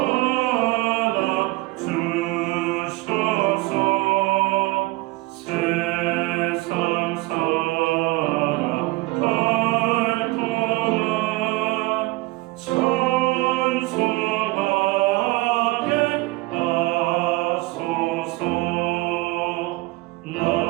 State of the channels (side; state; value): left; quieter; 21.8 dB